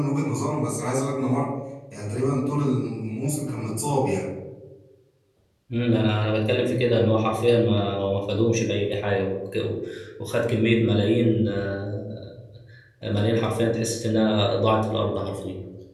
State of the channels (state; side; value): identical; both; correlation 1.00